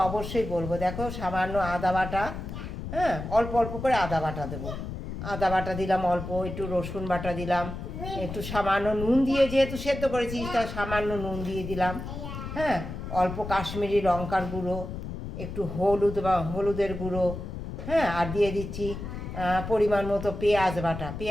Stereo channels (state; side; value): noise; left; rumble, 7 dB below the sound